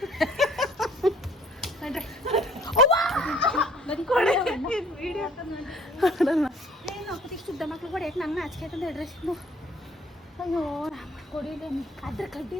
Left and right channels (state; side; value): normal; both; correlation 0.56